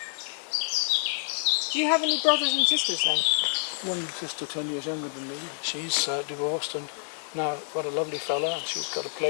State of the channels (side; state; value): right; silent; digital silence